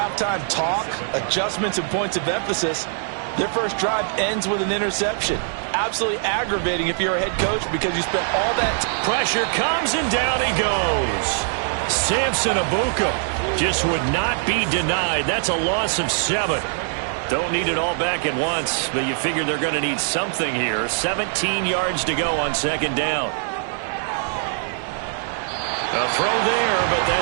talk, adjustments, and points of emphasis, their first drive ends with an interception. Absolutely aggravating if you're a head coach because you spent all that. Pressure comes and down he goes. Samson Abuka just would not be denied. That's a loss of 7. Don't need it all back at once, but you figure they're going to need something here. 17 yards to go on 2nd down. A throw there, but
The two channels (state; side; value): silent; left; 61 dB below the other